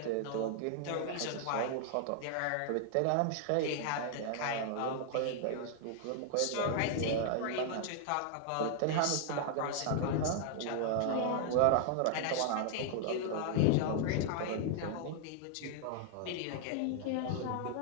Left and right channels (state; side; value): different; both; correlation 0.00